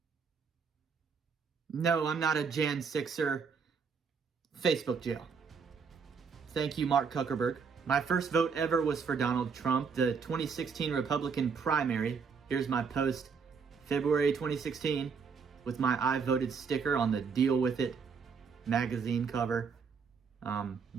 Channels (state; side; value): quieter; left; 5.8 dB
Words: No, I'm not a Jan 6er. Facebook jail. Thank you, Mark Zuckerberg. My first vote ever was for Donald Trump, the 2016 Republican primary. Here's my post, February 2016, with my I voted sticker on the Deal With It magazine cover.